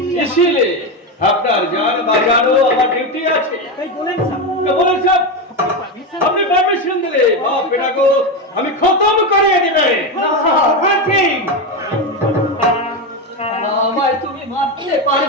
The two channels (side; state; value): both; normal; correlation 0.13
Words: इसीलिए আপনার যান বাজানো আমার ডিউটি আছে। বলেন সাহেব, আপনি পারমিশন দিলে বাপ বেটাকে আমি খতম করে দিবে। আমায় তুমি মারতে